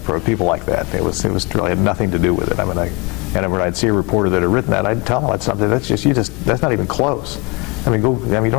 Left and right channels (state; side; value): quieter; right; 29.0 dB